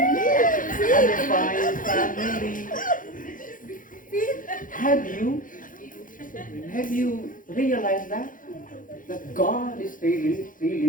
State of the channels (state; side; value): late; right; 0.39 ms